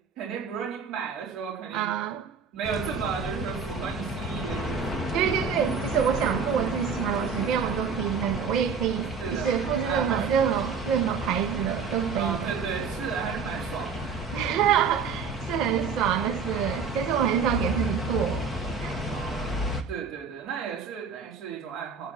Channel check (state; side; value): quieter; left; 5.7 dB